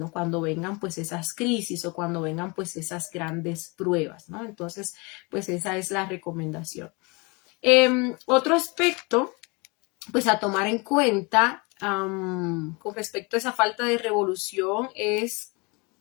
cuando vengan pues esas crisis o cuando vengan pues esas grandes pruebas, ¿no? Entonces, pues esa es la recomendación. Otro aspecto, pues a tomar en cuenta con respecto a esa falta de revolución es,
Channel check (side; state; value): right; quieter; 28.5 dB